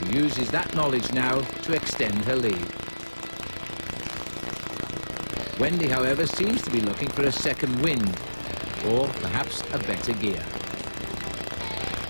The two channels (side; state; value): both; inverted; correlation -1.00